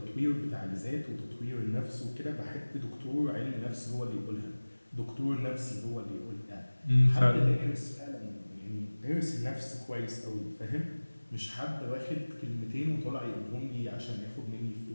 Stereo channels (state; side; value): inverted; both; correlation -1.00